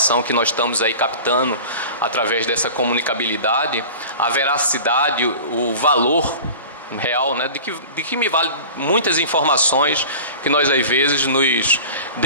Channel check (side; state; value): both; inverted; correlation -0.38